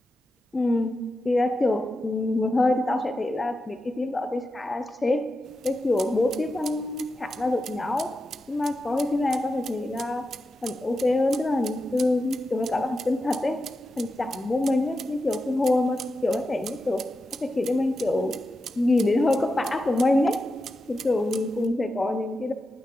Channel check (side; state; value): both; normal; correlation 0.90